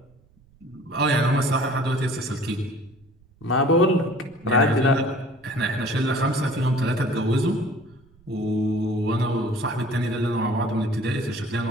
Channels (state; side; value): noise; right; rumble, 30 dB below the sound